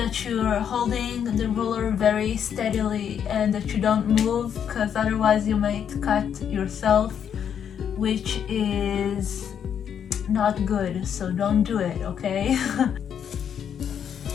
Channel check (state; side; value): quieter; right; 8.4 dB